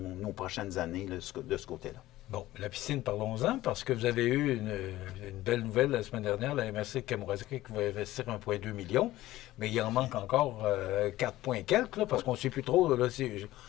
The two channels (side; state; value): right; quieter; 16.1 dB